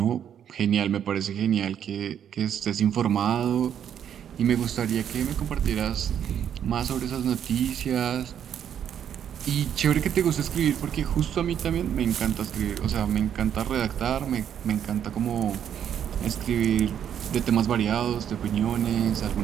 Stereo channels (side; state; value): left; quieter; 9.2 dB